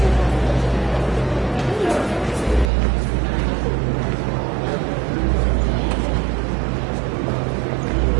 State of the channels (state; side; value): drops out; left; at 2.7 s